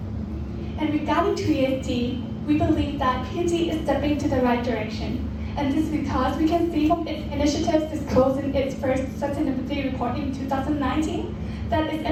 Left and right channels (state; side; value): identical; both; correlation 1.00